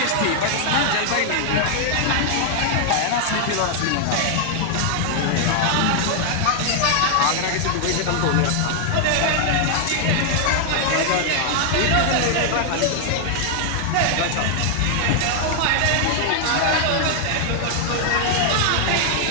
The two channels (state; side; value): different; both; correlation 0.00